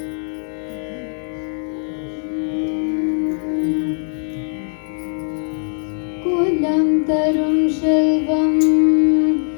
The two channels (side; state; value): right; silent; digital silence